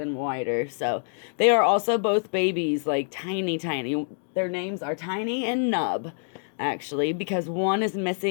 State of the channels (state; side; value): silent; right; digital silence